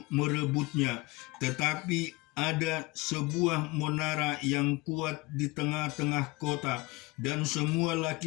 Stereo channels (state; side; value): quieter; right; 22.8 dB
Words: merebutnya, tetapi ada sebuah menara yang kuat di tengah-tengah kota, dan semua